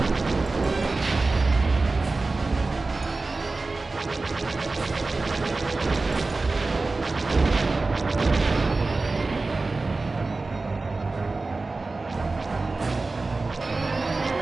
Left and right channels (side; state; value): left; quieter; 3.5 dB